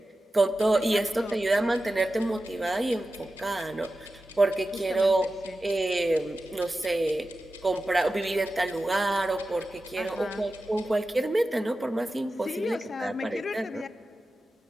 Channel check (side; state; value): both; normal; correlation 0.93